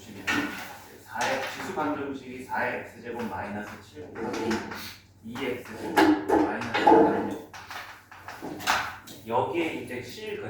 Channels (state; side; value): identical; both; correlation 1.00